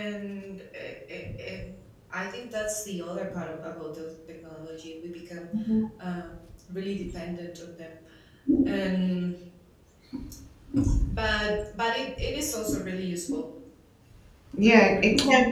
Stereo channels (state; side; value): identical; both; correlation 1.00